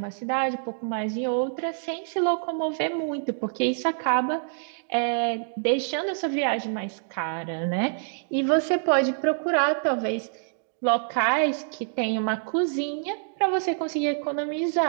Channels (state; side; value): silent; left; digital silence